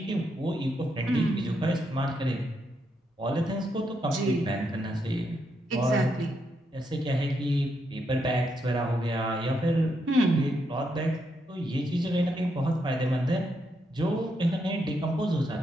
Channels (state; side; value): normal; both; correlation 0.79